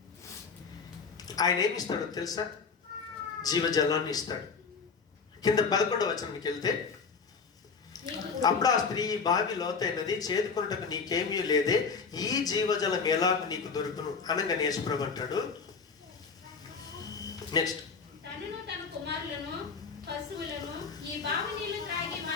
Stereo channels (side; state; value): right; quieter; 5.3 dB